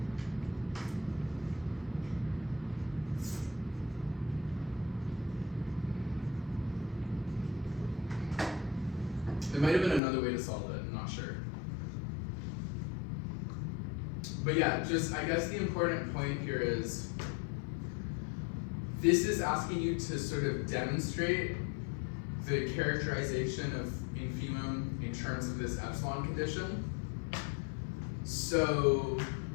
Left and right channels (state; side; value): drops out; right; at 10.0 s